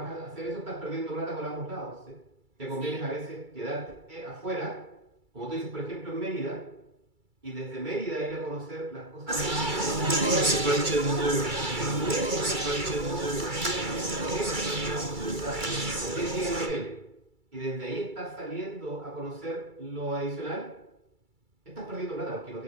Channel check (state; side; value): late; left; 2.3 ms